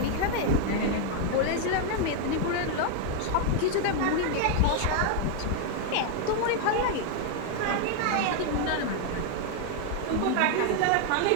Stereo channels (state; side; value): different; both; correlation 0.00